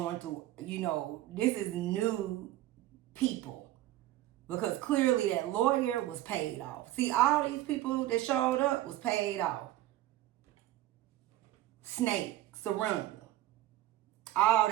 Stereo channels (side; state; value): left; quieter; 14.8 dB